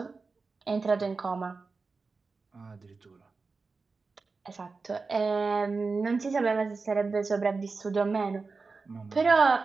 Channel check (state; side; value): quieter; left; 4.2 dB